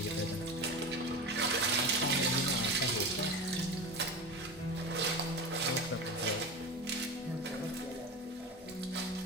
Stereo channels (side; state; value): both; normal; correlation 0.27